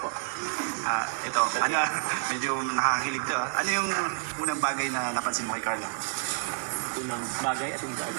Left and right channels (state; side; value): silent; left; digital silence